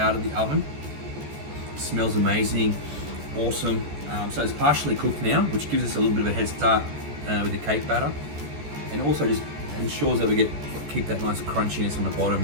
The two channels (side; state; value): left; late; 14 ms